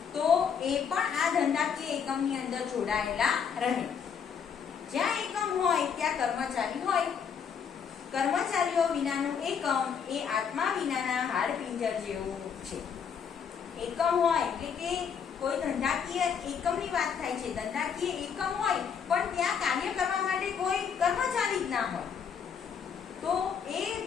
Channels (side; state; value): right; quieter; 7.1 dB